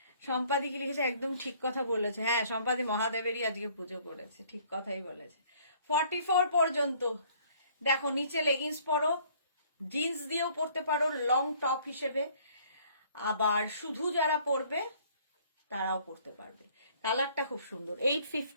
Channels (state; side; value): inverted; both; correlation -0.58